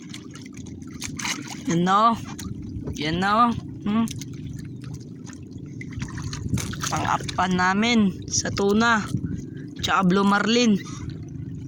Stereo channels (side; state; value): both; identical; correlation 1.00